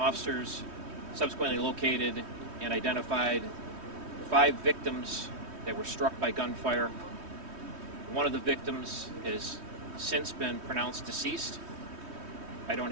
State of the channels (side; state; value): left; late; 3.2 ms